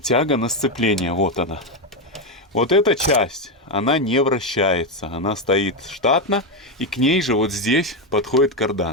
тяга на сцепление. Вот она. Вот эта часть, она не вращается. Она стоит штатно. И к ней же вот здесь подходит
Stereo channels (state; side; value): normal; both; correlation 0.08